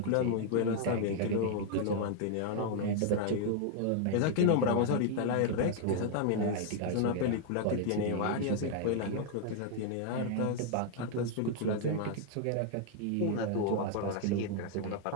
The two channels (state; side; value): different; both; correlation 0.00